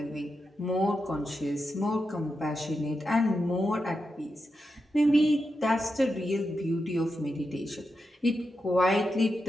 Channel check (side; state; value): both; normal; correlation 0.87